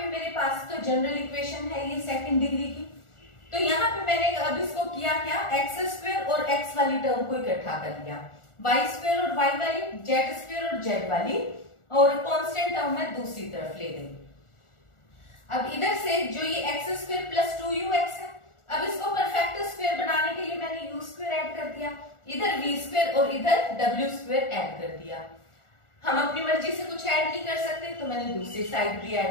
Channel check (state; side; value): late; right; 1.4 ms